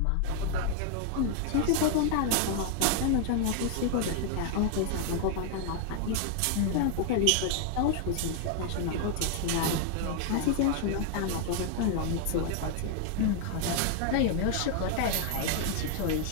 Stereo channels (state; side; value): different; both; correlation 0.00